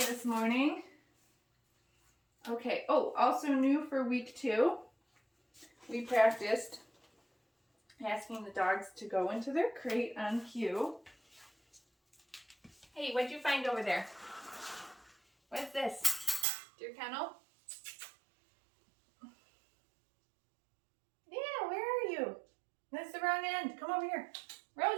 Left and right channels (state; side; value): drops out; left; at 16.4 s